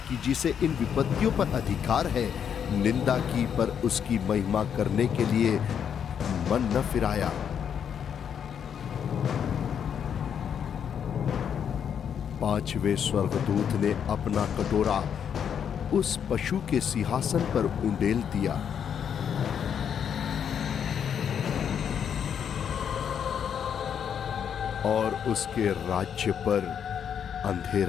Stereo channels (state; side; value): quieter; right; 8.1 dB